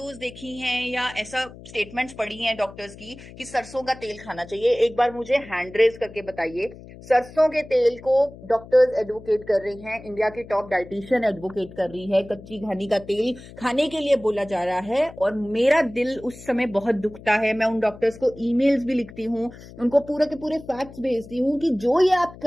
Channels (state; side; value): noise; left; hum, 17 dB below the sound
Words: देखी हैं या ऐसा स्टेटमेंट्स पढ़ी हैं डॉक्टर्स की कि सरसों का तेल खाना चाहिए? एक बार मुझे हैंड रेज करके बताइए। सरसों के तेल को डॉक्टर्स एडवोकेट कर रही हैं, इंडिया की टॉप डाइटिशियन एडवोकेट कर रही है, कच्ची घानी का तेल खाने के लिए बोला जा रहा है, और मेरा दिल उस समय बहुत दुखता है। मैं उन डॉक्टर्स को ईमेल्स भी लिखती हूँ, उनको पूरे के पूरे फैक्ट्स भेजती हूँ कि जो ये आप